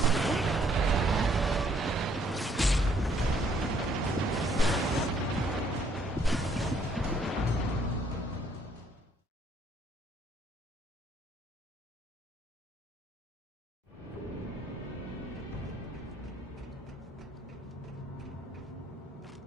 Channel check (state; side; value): normal; both; correlation 0.66